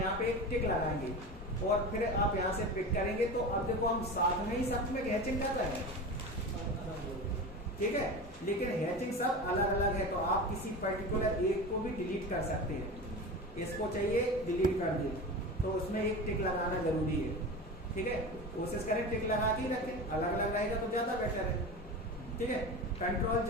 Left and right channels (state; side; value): normal; both; correlation 0.29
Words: पे एक टिक लगाएंगे और फिर आप यहाँ से पिक करेंगे। तो अब देखो हम साथ में ही सब में हैचिंग कर रहे हैं, ठीक है, लेकिन हैचिंग सब अलग अलग है। तो आप किसी पर्टिकुलर एक को भी डिलीट कर सकते हैं। इसको चाहिए डिलीट कर दिए, तो उसमें एक टिक लगाना जरूरी है, ठीक है। कोशिश करें टिक लगा के रखें, अलग अलग रहेगा तो ज्यादा बेटर है, ठीक है। कंट्रोल